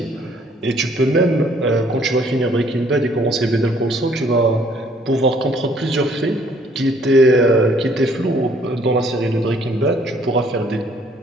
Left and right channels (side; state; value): both; normal; correlation 0.62